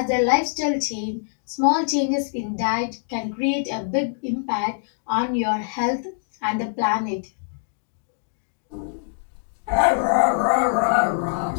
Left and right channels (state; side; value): silent; right; digital silence